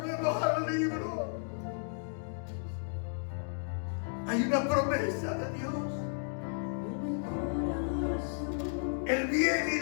al libro. Hay una promesa de Dios. El bien y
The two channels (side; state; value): right; silent; digital silence